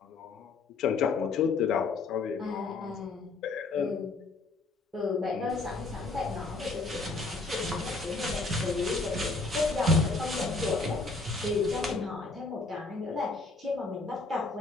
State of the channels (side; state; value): right; quieter; 3.6 dB